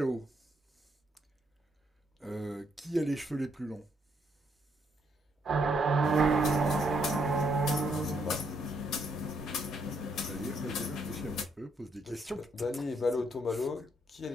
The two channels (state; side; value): normal; both; correlation 0.74